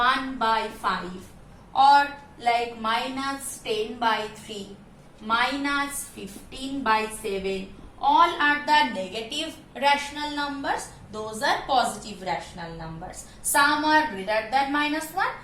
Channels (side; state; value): both; identical; correlation 1.00